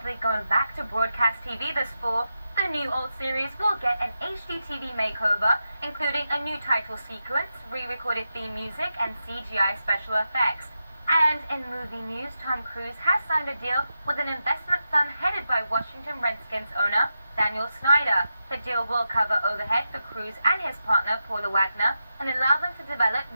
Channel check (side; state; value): both; inverted; correlation -0.89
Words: going back to broadcast TV this fall. The new old series will get an HD TV makeover, including a new title sequence, re-recorded theme music, and CGI special effects. And in movie news, Tom Cruise has signed a deal with an investment firm headed by Washington Redskins owner Daniel Snyder. The deal will cover overhead for Cruise and his partner Paula Wagner and allow them to develop